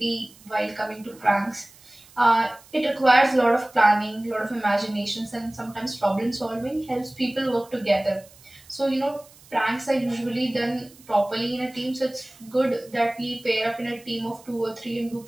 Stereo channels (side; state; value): right; noise; hiss, 25 dB below the sound